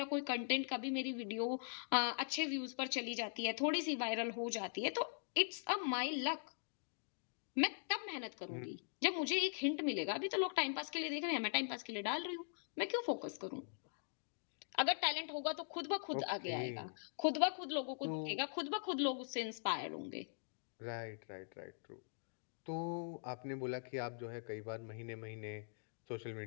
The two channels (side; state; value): right; silent; digital silence